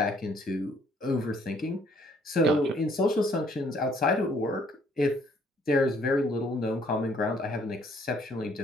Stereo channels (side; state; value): both; normal; correlation 0.64